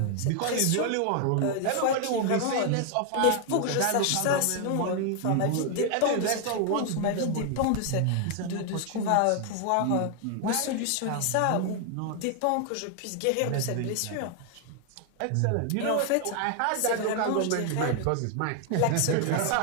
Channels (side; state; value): both; different; correlation 0.00